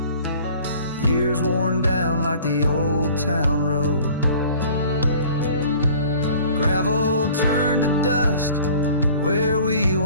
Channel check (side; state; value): both; inverted; correlation -0.48